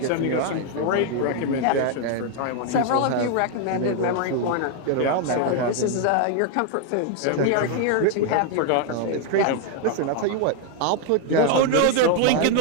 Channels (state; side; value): different; both; correlation 0.00